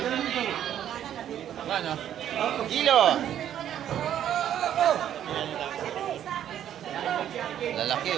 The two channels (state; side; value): quieter; left; 10.5 dB